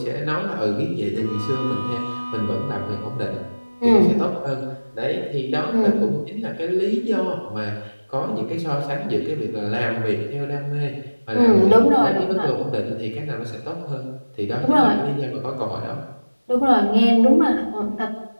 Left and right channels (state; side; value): inverted; both; correlation -1.00